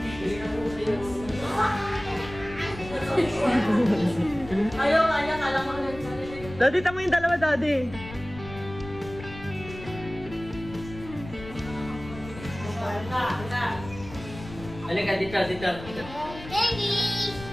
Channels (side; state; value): left; noise; rumble, 14 dB below the sound